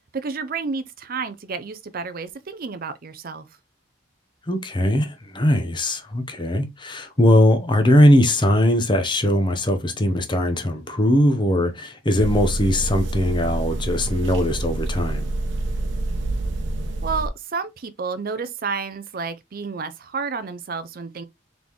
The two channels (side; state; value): both; normal; correlation 0.73